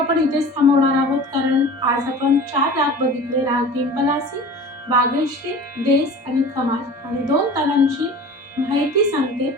इथेच थांबवणार आहोत, कारण आज आपण 4 राग बघितले, राग पिंपलासी, बागेश्री, देस आणि खमाज, आणि 2 तालांची माहिती सांगते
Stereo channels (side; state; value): both; normal; correlation 0.39